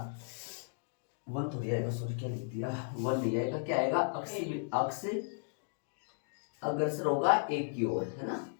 1 थोड़ी आएगा, सॉरी क्या लिख दिया, 1 नहीं आएगा, क्या आएगा, अक्ष अग्रसर होगा 1 की ओर, है ना,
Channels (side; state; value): right; silent; digital silence